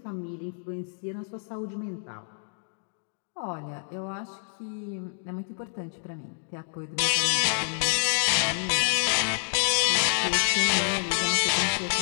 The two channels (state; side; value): silent; right; 59 dB below the other